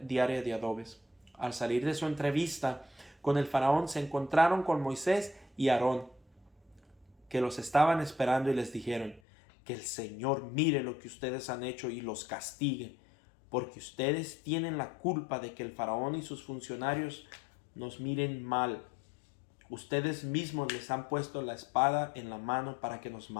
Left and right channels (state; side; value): drops out; right; at 9.2 s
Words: diaria de adobes. Al salir de su entrevista con el faraón, se encontraron con Moisés y Aarón, que los estaban esperando, y les dijeron: que el Señor mire lo que ustedes han hecho y los castigue, porque ustedes tienen la culpa de que el faraón y sus funcionarios nos miren mal. Ustedes mismos les han puesto la espada en la mano para que nos